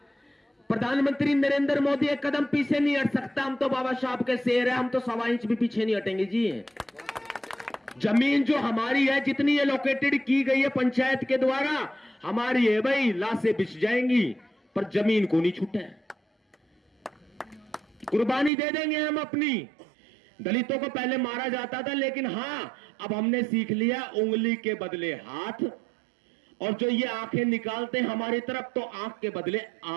प्रधानमंत्री नरेंद्र मोदी एक कदम पीछे नहीं हट सकता, हम तो बाबा साहब के शेर है, हम तो 1.25 इंच भी पीछे नहीं हटेंगे जी। जमीन जो हमारी है, जितनी एलोकेटेड की गई है पंचायत के द्वारा, हमारी है भाई। लाशें बिछ जाएंगी पर जमीन को नहीं छूटे। कुर्बानी दे देंगे हम अपनी। दलितों को पहले मारा जाता था, लेकिन हां अब हमने सीख लिया उंगली के बदले हाथ, और जो ये आंखें निकालते हैं हमारी तरफ, तो आंख के बदले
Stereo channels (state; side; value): drops out; left; at 18.5 s